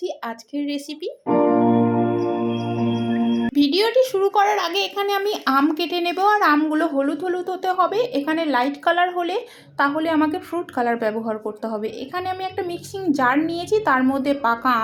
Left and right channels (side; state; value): both; identical; correlation 1.00